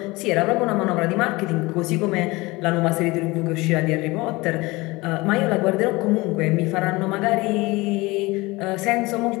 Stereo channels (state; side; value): quieter; right; 22.4 dB